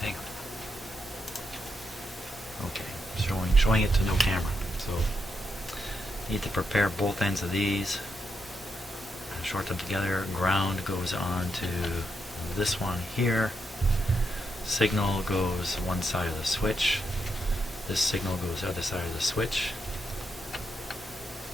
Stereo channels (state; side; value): normal; both; correlation 0.82